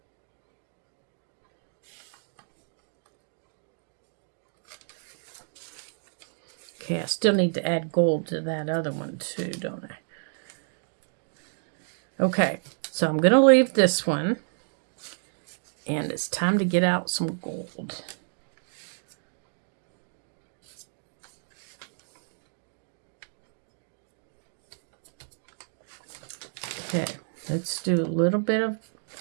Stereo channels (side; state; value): left; silent; digital silence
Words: Okay, I still need to add gold to that other one too, don't I? Okay, so I'm going to leave this one. And it's time to get out some gold. Okay, let's do a little bit of,